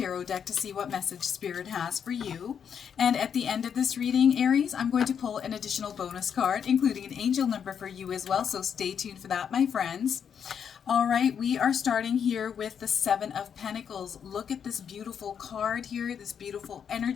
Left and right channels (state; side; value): quieter; right; 7.7 dB